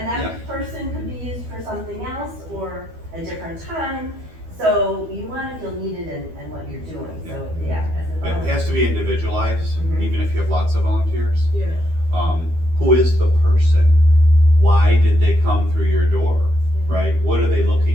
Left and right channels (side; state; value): left; late; 12 ms